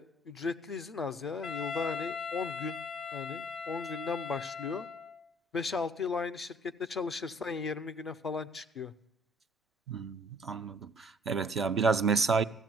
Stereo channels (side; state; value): both; normal; correlation 0.58